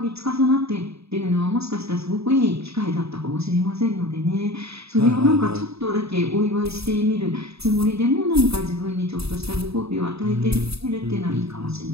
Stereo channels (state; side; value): late; left; 0.78 ms